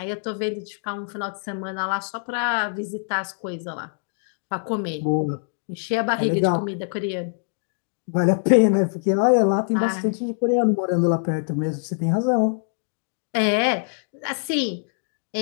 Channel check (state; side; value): silent; right; digital silence